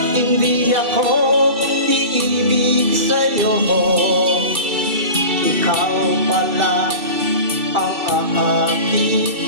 hindi ako iibig sa'yo, ikaw pala ang aakit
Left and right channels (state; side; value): late; left; 2.6 ms